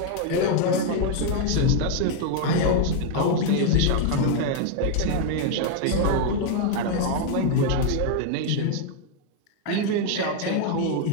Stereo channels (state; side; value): different; both; correlation 0.00